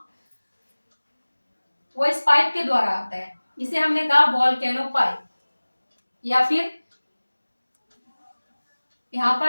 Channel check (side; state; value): both; inverted; correlation -1.00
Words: वो इस पाइप के द्वारा आता है। इसे हमने कहा वोल्केनो पाइप, या फिर यहाँ